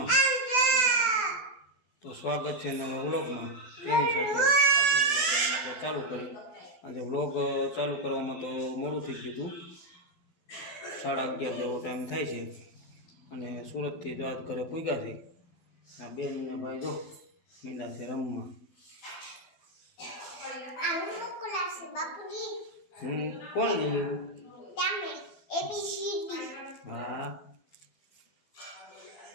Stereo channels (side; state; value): right; late; 12 ms